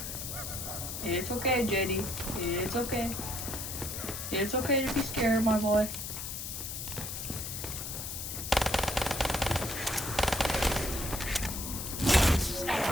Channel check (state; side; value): noise; left; hiss, 6 dB below the sound